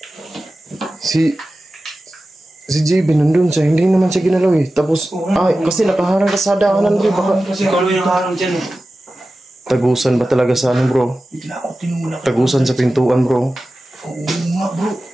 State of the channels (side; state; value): both; normal; correlation 0.95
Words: Si JB nandun siya, hindi naman siya ginalaw eh. Tapos, kasi nakaharang ka sa daanan bro. Baka Kasi ikaw yung nakaharang dyan eh. tagusan ba talaga sa ano bro? Bigla ako tinula. Tagusan sa pintuan bro. Oo nga bro.